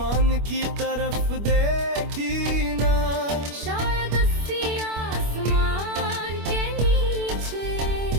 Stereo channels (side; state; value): left; late; 25 ms